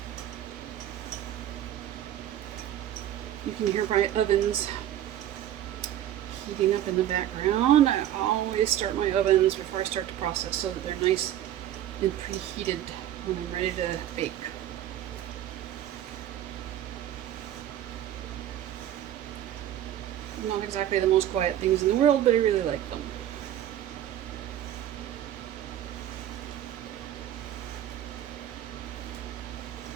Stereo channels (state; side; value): quieter; left; 11.8 dB